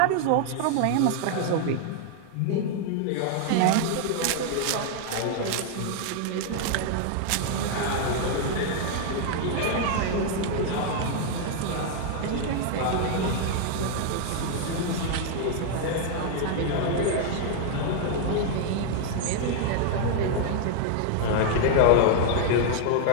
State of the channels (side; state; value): both; different; correlation 0.00